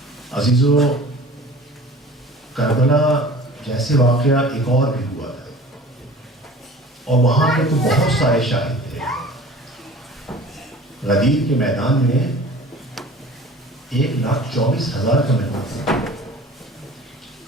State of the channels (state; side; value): normal; both; correlation 0.43